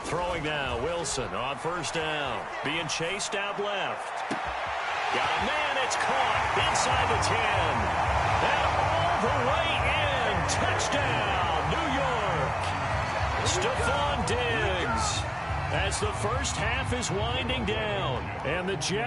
Throwing now, Wilson on 1st down. Being chased out left. Got a man, it's caught inside the 10. And all the way in. Touchdown, New York. Stephon Diggs. As the first half is winding down. And the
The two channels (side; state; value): both; identical; correlation 1.00